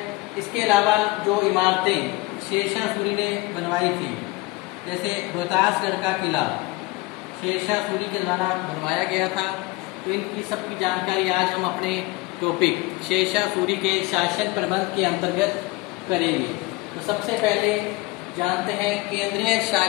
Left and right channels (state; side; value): quieter; right; 22.0 dB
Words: इसके अलावा जो इमारतें शेरशाह सूरी ने बनवाई थी, जैसे रोहतासगढ़ का किला शेरशाह सूरी के द्वारा बनवाया गया था, तो इनकी सबकी जानकारी आज हम अपने टॉपिक शेरशाह सूरी के शासन प्रबंध के अंतर्गत करेंगे। तो सबसे पहले जानते हैं केंद्रीय